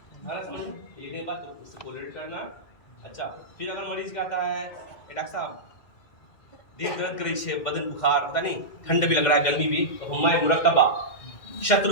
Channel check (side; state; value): right; late; 2.1 ms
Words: हमारा समझ लिखने के बाद तो उससे कोरिलेट करना। अच्छा, फिर अगर मरीज कहता है डॉक्टर साहब देह दर्द करी छे, बदन बुखार, पता नहीं ठंड भी लग रहा है, गर्मी भी, तो हुम्माए मुरक्कबा